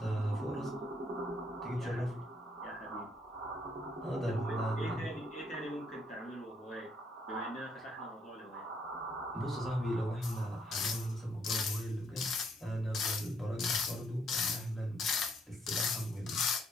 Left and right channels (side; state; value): both; normal; correlation 0.70